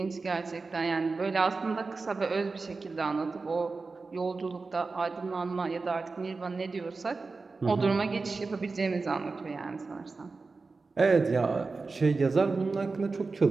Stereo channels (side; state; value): left; quieter; 4.0 dB